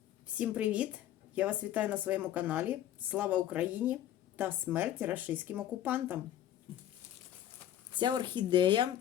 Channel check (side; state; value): right; quieter; 11.7 dB